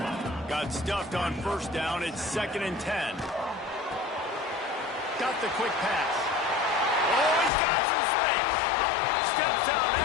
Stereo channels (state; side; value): drops out; right; at 7.5 s